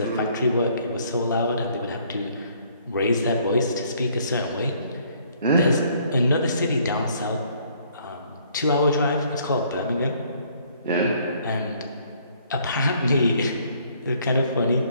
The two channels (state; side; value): inverted; both; correlation -0.63